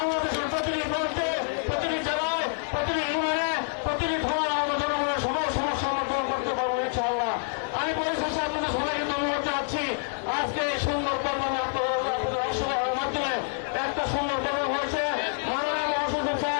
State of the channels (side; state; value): right; silent; digital silence